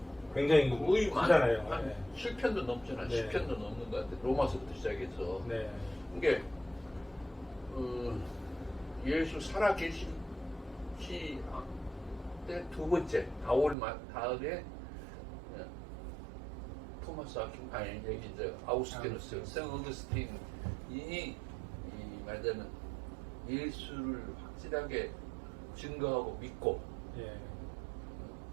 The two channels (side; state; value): left; drops out; at 13.8 s